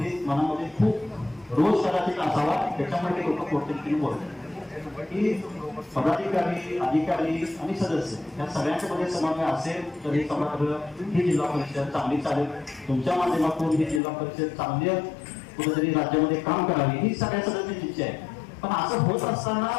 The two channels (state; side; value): drops out; right; at 14.0 s